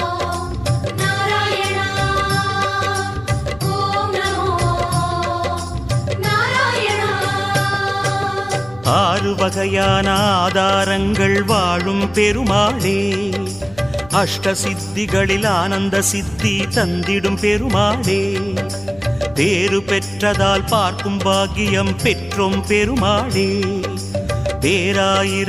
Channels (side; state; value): left; noise; hum, 22 dB below the sound